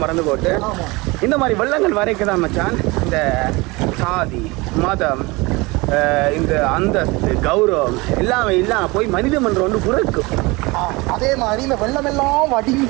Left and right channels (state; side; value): quieter; left; 24.1 dB